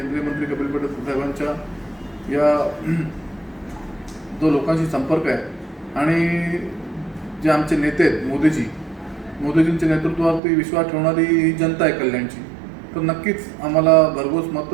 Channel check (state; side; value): drops out; left; at 10.4 s